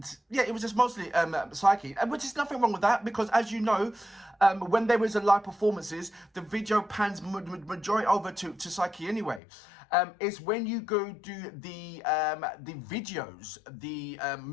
yeah, it was just mostly Psyche, which is nothing wrong with that, because as you know, when there is a live performances, the video pans majority over to Psyche anyway. It's when you go do the videos, the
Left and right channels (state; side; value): drops out; right; at 9.4 s